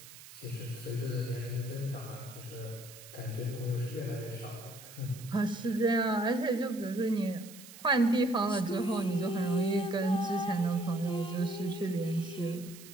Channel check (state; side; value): noise; right; hiss, 17 dB below the sound